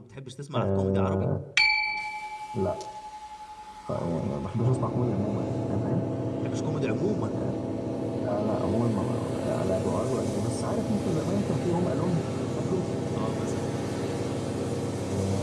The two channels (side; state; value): both; identical; correlation 1.00